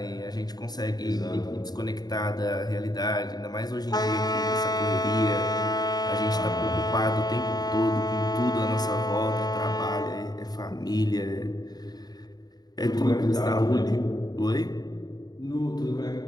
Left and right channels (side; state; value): right; late; 0.19 ms